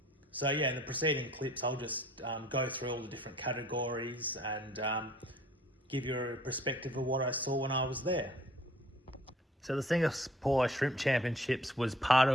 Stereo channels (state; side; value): normal; both; correlation 0.55